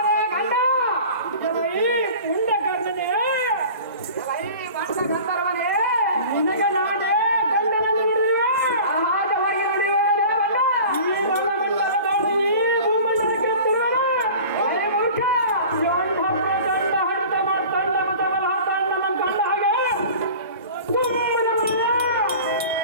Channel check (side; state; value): both; inverted; correlation -0.41